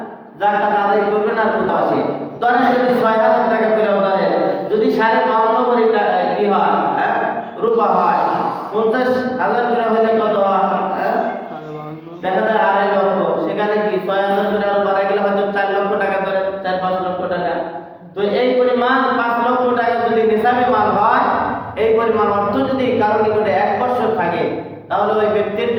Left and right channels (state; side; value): identical; both; correlation 1.00